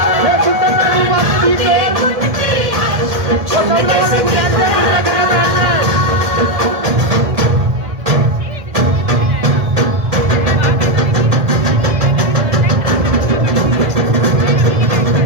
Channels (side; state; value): left; late; 1.7 ms